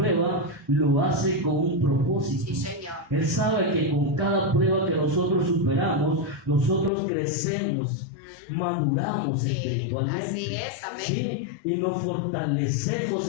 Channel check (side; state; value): right; drops out; at 6.9 s